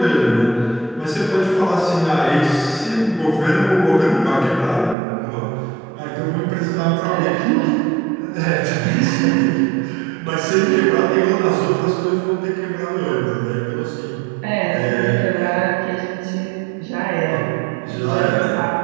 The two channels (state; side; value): drops out; left; at 5.0 s